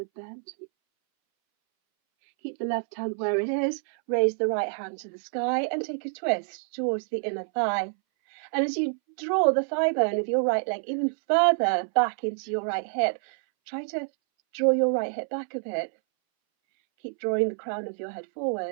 bend. Keep the left hand where it is, raise the right hand to the sky and take a twist towards the inner thigh. And as you draw the thigh bone of your right leg even further back into your right hip, try to draw your right hip back a bit. Keep drawing the crown of your head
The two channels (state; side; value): silent; left; 60 dB below the other